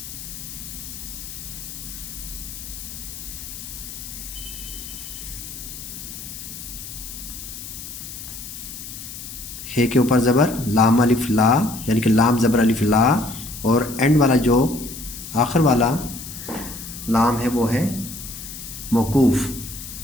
हे के ऊपर ज़बर, लाम अलिफ ला, यानी कि लाम ज़बर अलिफ ला, और एंड वाला जो आखिर वाला लाम है वो है मौकूफ़।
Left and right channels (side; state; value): left; noise; hiss, 11 dB below the sound